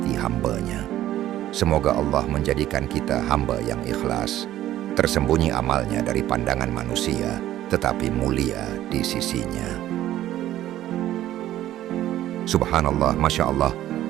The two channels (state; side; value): quieter; left; 13.3 dB